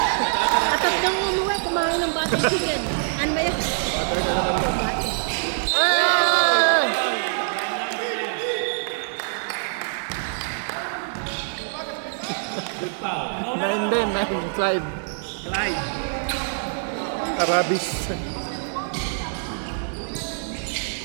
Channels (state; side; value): silent; left; 61 dB below the other